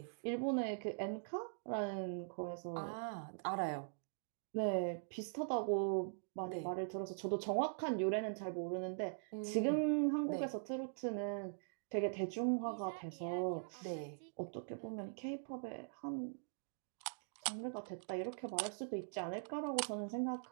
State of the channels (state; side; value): silent; left; digital silence